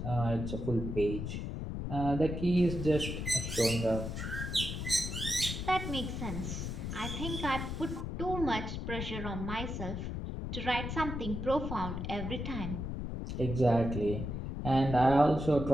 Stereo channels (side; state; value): left; noise; rumble, 4 dB below the sound